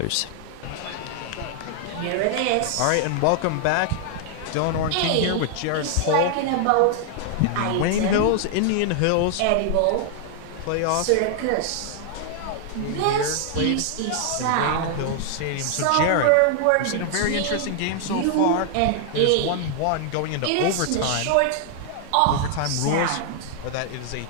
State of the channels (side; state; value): both; different; correlation 0.00